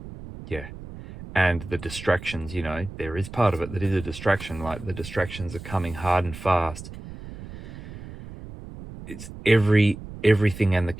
yeah. And the distractions, you know, there is part of it that is a distraction. Like, the distractions are coming hard and fast. It's everything and the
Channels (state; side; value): noise; right; rumble, 13 dB below the sound